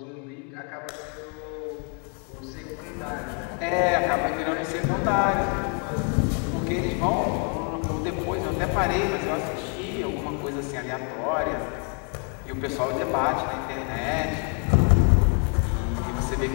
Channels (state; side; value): quieter; right; 38.0 dB